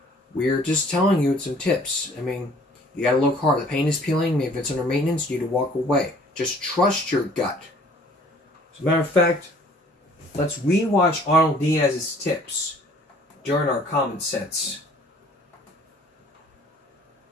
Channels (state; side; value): normal; both; correlation 0.55